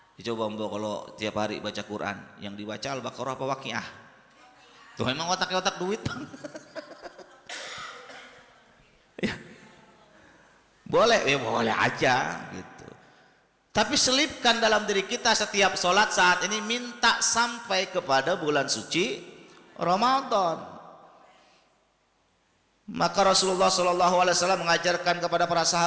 Coba Mbak kalau tiap hari baca Quran, yang dibaca Al-Baqarah apa Waqiah? Tuh memang otaknya otak duit. Ya. Boleh, ya boleh aja gitu. Tapi selipkan dalam diri kita setiap sholat saat ini minta sampai kepada bulan suci Ramadan. Maka Rasulullah SAW mengajarkan kepada para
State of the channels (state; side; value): identical; both; correlation 1.00